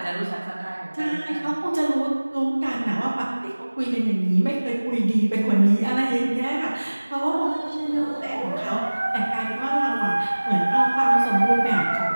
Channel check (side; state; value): both; inverted; correlation -1.00